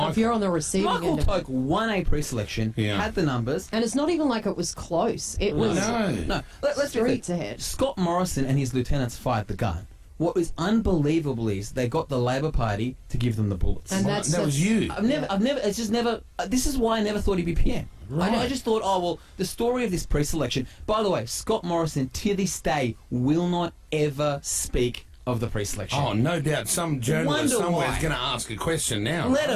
If you're on the receiving Michael end of it. Toke won a pre-selection, Yeah. had the numbers. And it's not even like it was close. It was No. Let's be streets clear. ahead. Scott Morrison and his lieutenants fired the gun. What was unbelievable is they got the Labor Party to give them the bullets. And that's that was you. I've never, it's just never, this is why I never thought he'd be PM. I just thought, oh, well, the story of this pre-selection, by the way, Scott Morrison to this day will not ever speak of the pre-selection. Oh, no doubt. Some journalist Wonder somewhere why. is going to ask a question now. Let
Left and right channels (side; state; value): both; identical; correlation 1.00